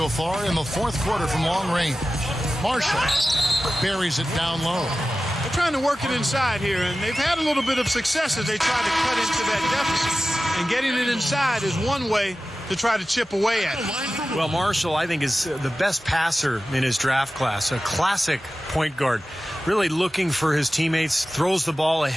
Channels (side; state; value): both; normal; correlation 0.95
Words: far in the fourth quarter from long range. Marshall buries it down low. They're trying to work it inside here, and they've had a little bit of success as they try to cut into that deficit. And getting it inside is one way to try to chip away at it. Well, Marshall, I think, is the best passer in his draft class, a classic point guard. Really looking for his teammates, throws the ball